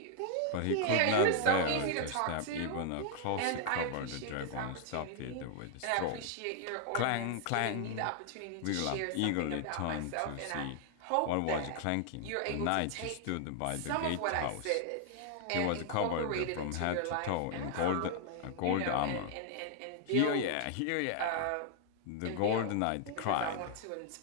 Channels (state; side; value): different; both; correlation 0.00